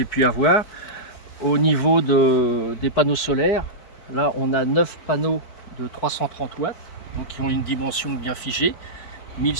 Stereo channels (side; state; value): right; late; 4.5 ms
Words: pu avoir, au niveau des panneaux solaires, là on a 9 panneaux de 330 watts, donc qui ont une dimension bien figée,